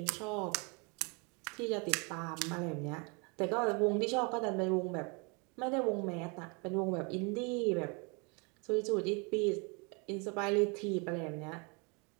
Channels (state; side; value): quieter; left; 32.0 dB